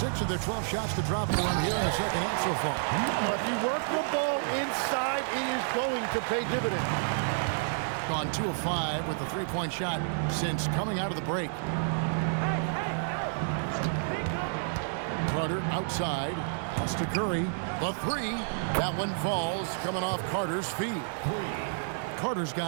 of their 12 shots to drop for him here in the second half so far. Well, if you work the ball inside, it is going to pay dividends. Gone 2 of 5 with the three-point shot since coming out of the break. Carter outside. Pass to Curry. The 3. That one falls coming off Carter's feet. Carter's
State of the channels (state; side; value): silent; left; digital silence